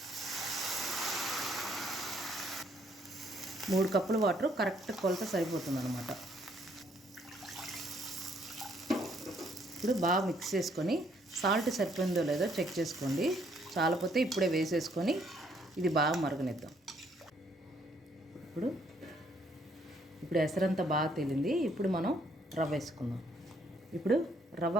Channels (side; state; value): both; normal; correlation 0.68